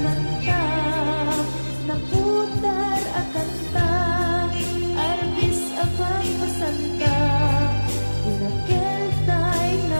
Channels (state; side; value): inverted; both; correlation -1.00